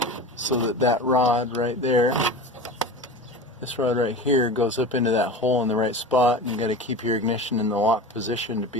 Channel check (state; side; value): normal; both; correlation 0.31